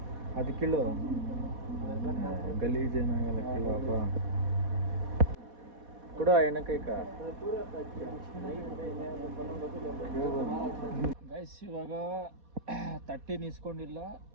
ಅದು ಕೀಳು, ಗಲೀಜೇನಾಗಲ್ಲ, ಕೀಳಪ್ಪ ಕೊಡು ಎಣ್ಣೆಕೈಕ. ಗೈಸ್ ಇವಾಗ 13 ಇಸ್ಕೊಂಡಿಲ್ಲ,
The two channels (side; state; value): left; late; 4.2 ms